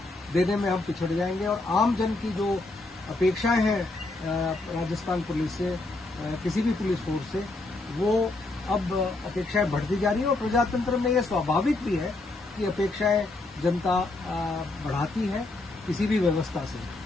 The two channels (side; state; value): right; quieter; 3.0 dB